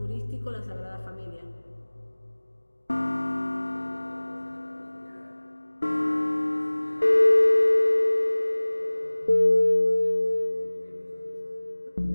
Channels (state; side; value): inverted; both; correlation -1.00